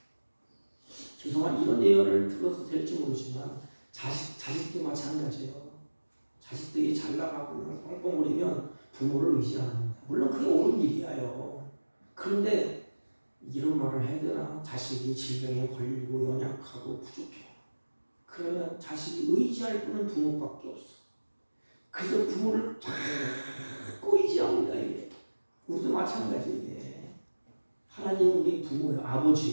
죄송한 이런 예언을 들어서 될지 모르지만 자식도 마찬가지예요. 자식들이 잘 나가고 뻥뻥거리면 부모를 의지 안 합니다. 물론 그게 옳은 일이에요. 그런데 이런 말을 해야 되나? 자식이 질병에 걸리고 연약하고 부족해. 그러면 자식이 의지할 분은 부모밖에 없어. 그래서 부모를 자꾸 의지합니다. 이게. 우리도 마찬가지예요. 하나님 우리 부모예요.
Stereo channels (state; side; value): inverted; both; correlation -1.00